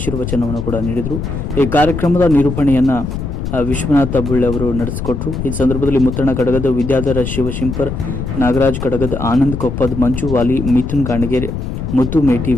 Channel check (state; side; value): noise; left; rumble, 5 dB below the sound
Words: ಕೂಡ ನೀಡಿದರು. ಈ ಕಾರ್ಯಕ್ರಮದ ನಿರೂಪಣೆಯನ್ನು ವಿಶ್ವನಾಥ ಬುಳ್ಳೆ ಅವರು ನಡೆಸಿಕೊಟ್ಟರು. ಈ ಸಂದರ್ಭದಲ್ಲಿ ಮುತ್ತಣ್ಣ ಕಡಗದ, ವಿದ್ಯಾಧರ ಶಿವಶಂಕರ್, ನಾಗರಾಜ್ ಕಡಗದ, ಆನಂದ್ ಕೊಪ್ಪದ್, ಮಂಜು ವಾಲಿ, ಮಿಥುನ್ ಗಾಣಿಗೇರಿ, ಮುತ್ತು ಮೇಟಿ,